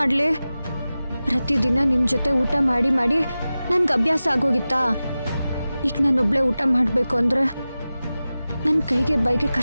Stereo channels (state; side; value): inverted; both; correlation -0.95